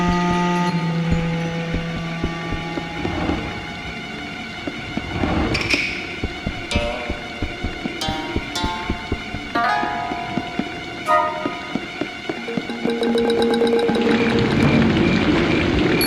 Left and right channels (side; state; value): both; identical; correlation 1.00